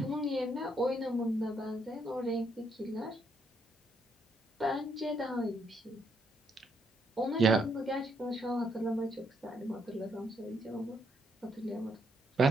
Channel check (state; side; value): normal; both; correlation 0.74